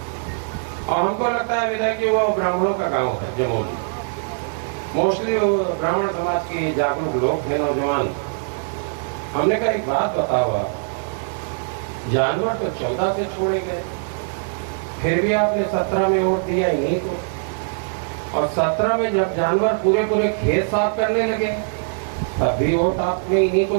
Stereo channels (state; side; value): silent; left; digital silence